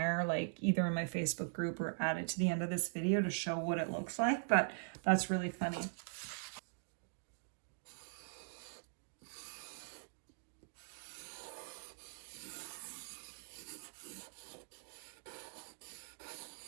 like either in my Facebook group or add it to the end of this video to show what it looks like. But that's really funny.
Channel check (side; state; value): left; silent; digital silence